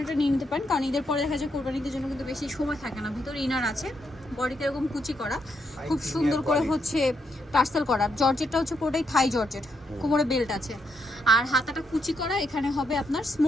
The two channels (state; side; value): normal; both; correlation 0.78